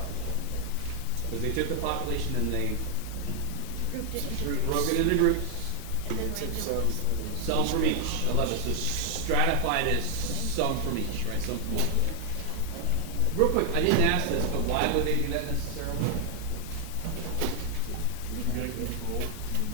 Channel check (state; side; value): different; both; correlation 0.00